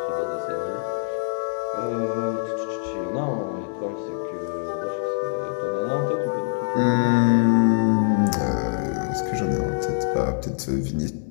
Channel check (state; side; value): silent; right; digital silence